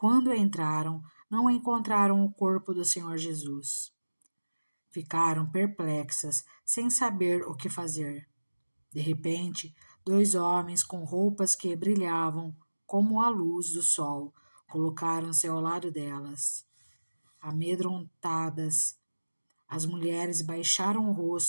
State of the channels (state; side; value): inverted; both; correlation -1.00